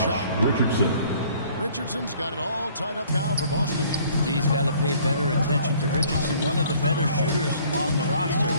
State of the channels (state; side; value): inverted; both; correlation -0.57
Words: Richardson. Richardson's got it all tied up now for Boston. He's got to pay better attention to Richardson, one of the better shooters on the roster.